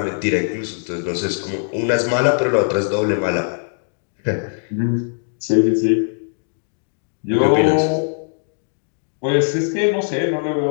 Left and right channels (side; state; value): right; silent; digital silence